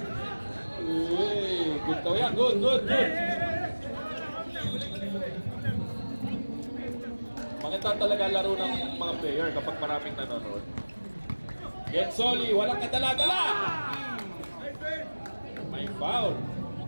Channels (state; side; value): inverted; both; correlation -1.00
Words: Uy. Good daw yan. Good. Maganda talaga laro ng mga player kapag maraming nanonood. Gensoli, walang kadala-dala! May foul.